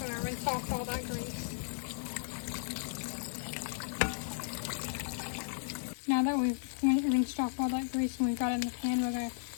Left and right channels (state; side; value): silent; right; digital silence